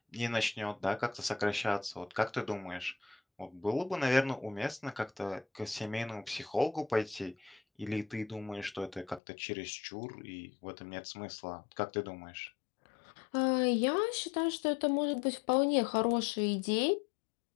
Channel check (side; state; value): right; drops out; at 9.2 s